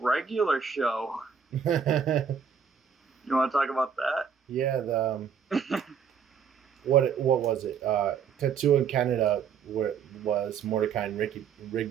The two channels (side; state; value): left; quieter; 7.0 dB